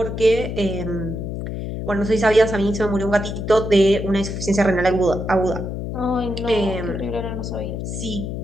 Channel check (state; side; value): noise; left; hum, 5 dB below the sound